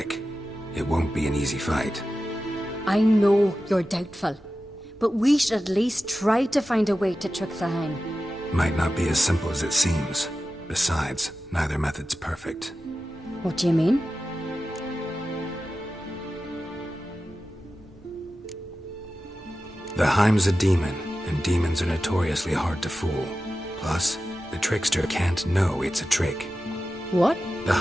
It won't be an easy fight. I know you're doubtful, but we should at least try to find a way to trick the Heim. Might not be as simple as it seems. Besides, neither method's perfect. What do you mean? The Heim's a demon, and demons are notoriously hard to fool. Plus, the trickster can't know it's a trick. What? The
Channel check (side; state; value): both; normal; correlation 0.93